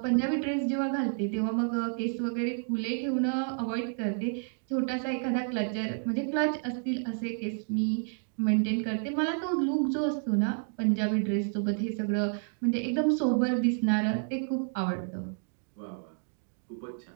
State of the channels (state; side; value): silent; left; 58 dB below the other